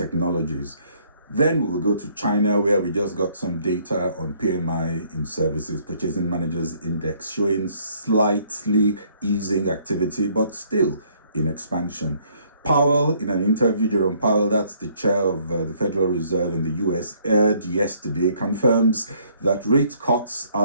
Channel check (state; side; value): inverted; both; correlation -0.64